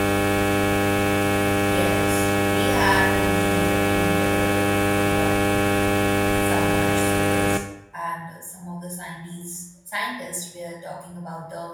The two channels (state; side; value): identical; both; correlation 1.00